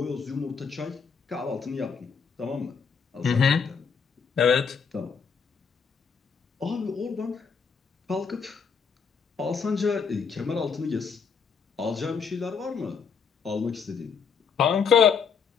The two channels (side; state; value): right; quieter; 6.1 dB